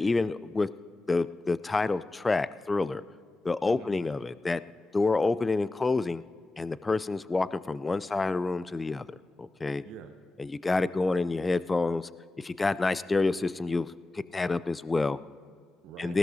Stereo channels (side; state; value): right; quieter; 3.0 dB